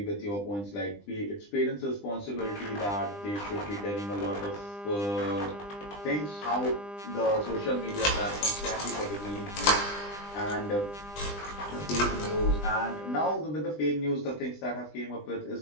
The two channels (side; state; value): right; late; 20 ms